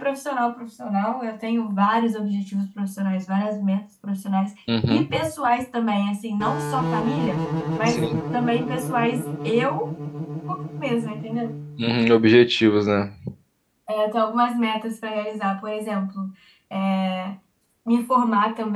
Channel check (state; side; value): identical; both; correlation 1.00